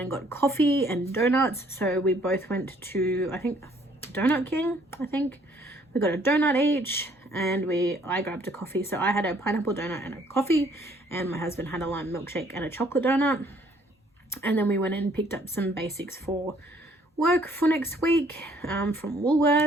and got coffee and donuts. So we both went to, I think, Donut King, I think. We got a donut each, and I grabbed a coffee. So I had a pineapple donut and a coffee, and my husband had a lime milkshake and a chocolate donut. And then we went and picked up some basics for work for next week from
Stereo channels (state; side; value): normal; both; correlation 0.62